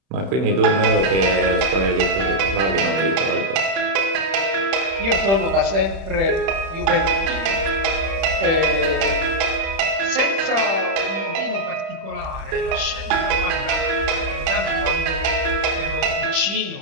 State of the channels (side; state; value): left; late; 31 ms